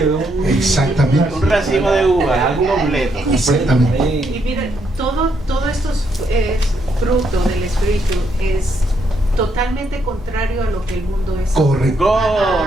exactamente. Un racimo de uva, algo completo. Exactamente. Y mira, todo estos frutos del Espíritu es totalmente contrario a lo que el mundo es. Correcto.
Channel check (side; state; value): both; normal; correlation 0.75